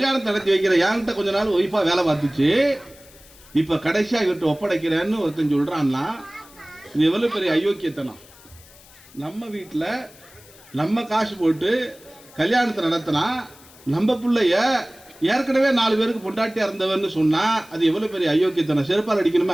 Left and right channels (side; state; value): left; noise; hiss, 24 dB below the sound